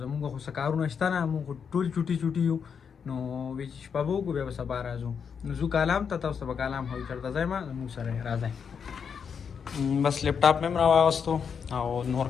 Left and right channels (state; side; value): quieter; right; 6.7 dB